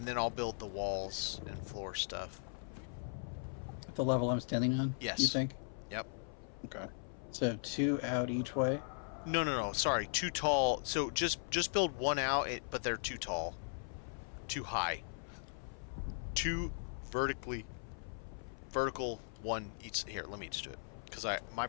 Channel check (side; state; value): right; silent; 52 dB below the other